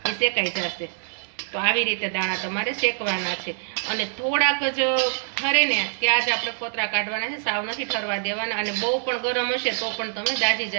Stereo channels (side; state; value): left; silent; 59 dB below the other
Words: એ શેકાઈ જશે. તો આવી રીતે દાણા તમારે શેકવાના છે, અને થોડાક જ ઠરે ને ત્યાં જ આપણે ફોતરા કાઢવાના છે, સાવ નથી ઠરવા દેવાના. અને બહુ પણ ગરમ હશે તો પણ તમે દાજી